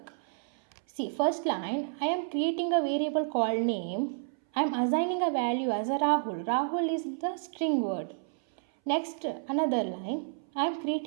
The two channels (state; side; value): silent; left; 58 dB below the other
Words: See, first line, I am creating a variable called name. I am assigning a value as a Rahul. Rahul is the string word. Next, another line, I am